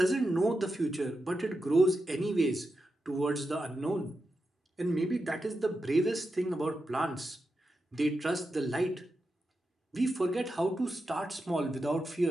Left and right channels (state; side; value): normal; both; correlation 0.88